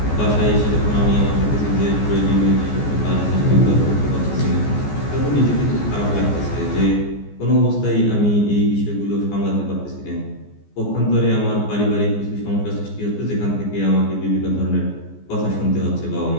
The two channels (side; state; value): right; late; 14 ms